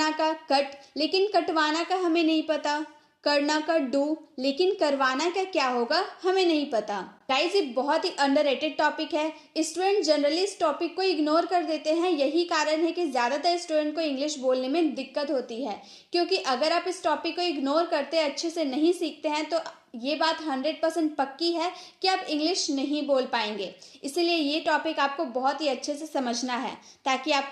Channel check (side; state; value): both; identical; correlation 1.00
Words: का कट, लेकिन कटवाना का हमें नहीं पता। करना का डू, लेकिन करवाना का क्या होगा हमें नहीं पता। गाइस, ये बहुत ही अंडररेटेड टॉपिक है। स्टूडेंट जनरली इस टॉपिक को इग्नोर कर देते हैं। यही कारण है कि ज़्यादातर स्टूडेंट को इंग्लिश बोलने में दिक्कत होती है, क्योंकि अगर आप इस टॉपिक को इग्नोर करते अच्छे से नहीं सीखते हैं तो ये बात 100% पक्की है कि आप इंग्लिश नहीं बोल पाएंगे। इसलिए ये टॉपिक आपको बहुत ही अच्छे से समझना है ताकि